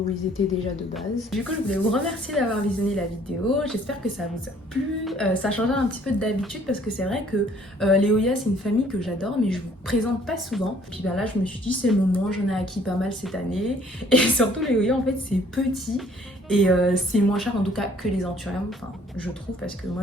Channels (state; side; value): normal; both; correlation 0.59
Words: ils étaient déjà de base. Du coup, je voulais vous remercier d'avoir visionné la vidéo, j'espère que ça vous a plu, ça change un petit peu d'habitude parce que c'est vrai que les Oya c'est une famille que j'adore mais je vous présente pas souvent. Puis ben là je me suis dit c'est le moment, j'en ai acquis pas mal cette année et surtout les Oya en fait c'est petit. Et c'est moins cher en tout cas que les anthuriums, enfin je trouve, parce que